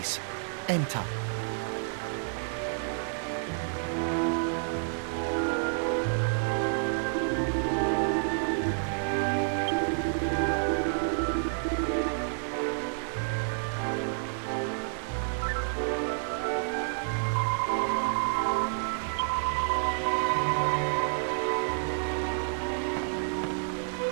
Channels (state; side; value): silent; left; digital silence